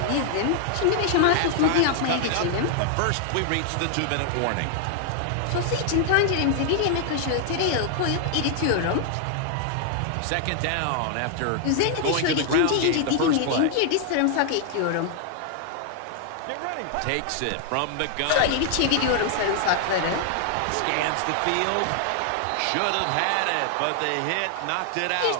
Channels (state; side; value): different; both; correlation 0.00